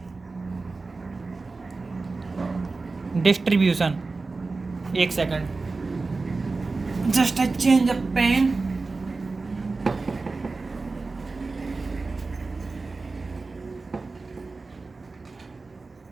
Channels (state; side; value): quieter; left; 3.8 dB